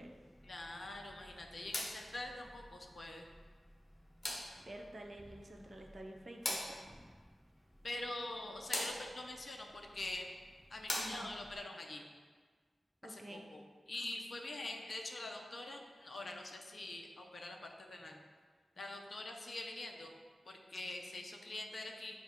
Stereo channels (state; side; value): normal; both; correlation 0.93